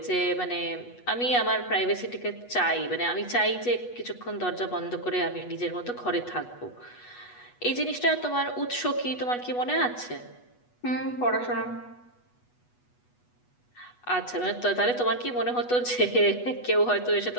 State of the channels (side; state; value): right; late; 8.2 ms